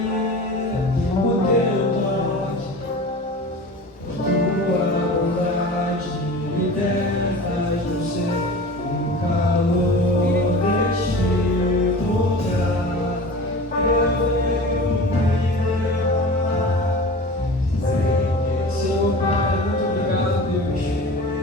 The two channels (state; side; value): normal; both; correlation 0.36